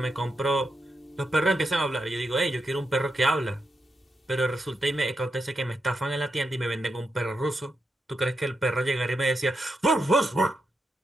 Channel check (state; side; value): normal; both; correlation 0.85